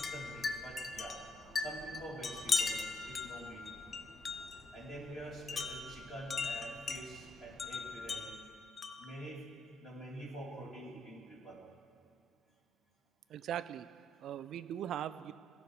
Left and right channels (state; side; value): normal; both; correlation 0.76